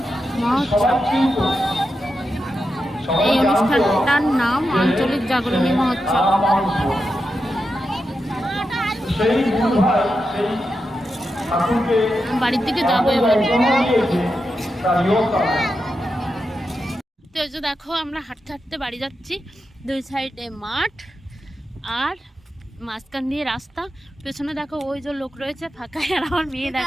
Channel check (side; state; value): both; normal; correlation 0.88